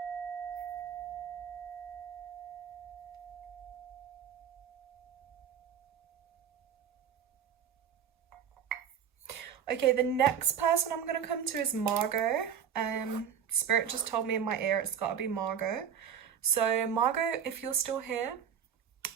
Okay, the next person I'm going to come to is Margot. Spirit just told me in my ear it's got to be Margot. So Margot, if you're still here,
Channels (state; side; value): quieter; left; 8.2 dB